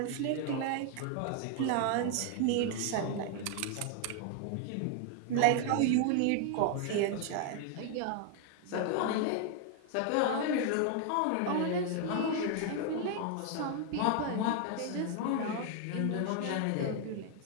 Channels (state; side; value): different; both; correlation 0.00